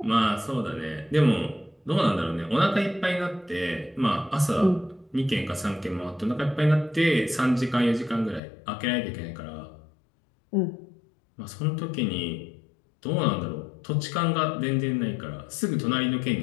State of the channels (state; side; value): drops out; right; at 8.4 s